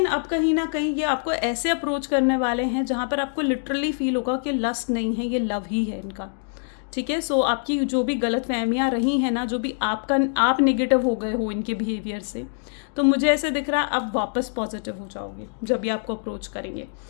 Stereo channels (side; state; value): right; silent; digital silence